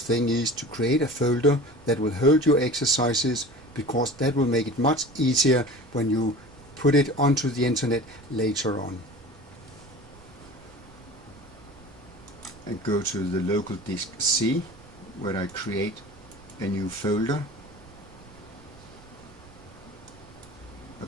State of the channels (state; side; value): noise; right; rumble, 23 dB below the sound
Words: is to create a folder that will hold your exercises, because that will make it much easier when you put it onto the internet later on. And go to the local disk C, where I create a new folder. I